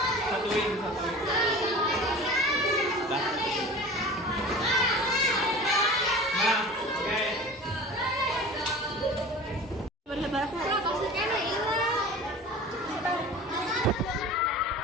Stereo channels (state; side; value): normal; both; correlation 0.38